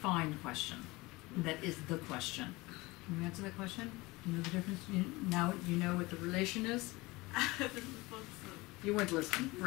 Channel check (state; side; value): quieter; right; 22.2 dB